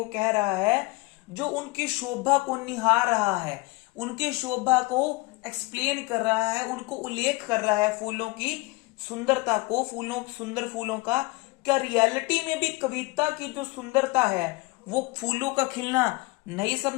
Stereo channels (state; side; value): quieter; right; 24.7 dB